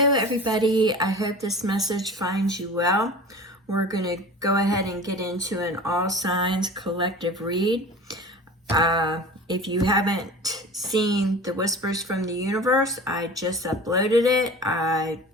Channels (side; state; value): both; normal; correlation 0.38